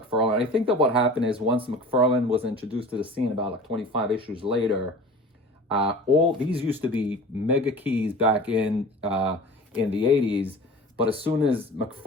I think that what happened is once McFarlane was introduced to the scene about like 25 issues later, all these used to be mega keys back in the 80s. But as soon as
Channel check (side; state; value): both; normal; correlation 0.39